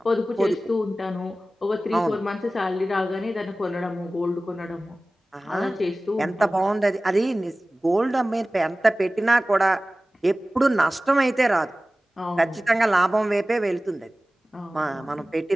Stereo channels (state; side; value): normal; both; correlation 0.97